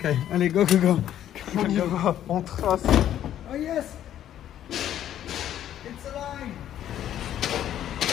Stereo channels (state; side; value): quieter; right; 11.2 dB